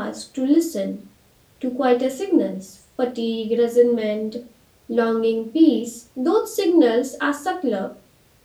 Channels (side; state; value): both; identical; correlation 1.00